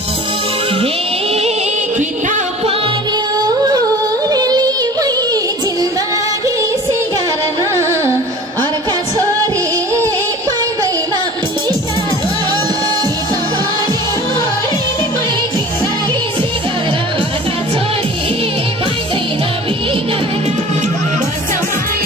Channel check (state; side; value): normal; both; correlation 0.43